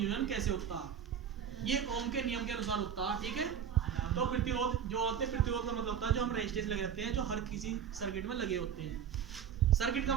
कैसे होता है। ये ओम के नियम के अनुसार होता है, ठीक है। तो प्रतिरोध जो होते हैं, प्रतिरोध का मतलब होता है जो हम रेजिस्टेंस लगे रहते हैं, जो हर किसी सर्किट में लगे होते हैं। सर्किट का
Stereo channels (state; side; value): quieter; left; 8.3 dB